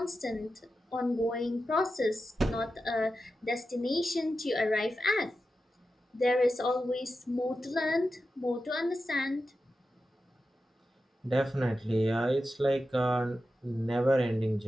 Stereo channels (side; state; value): both; normal; correlation 0.91